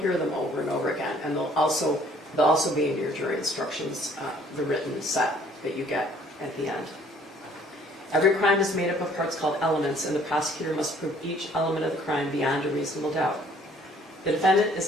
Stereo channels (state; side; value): normal; both; correlation 0.59